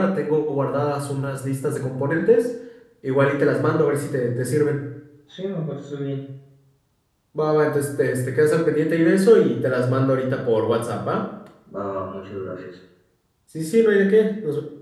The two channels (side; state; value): both; identical; correlation 1.00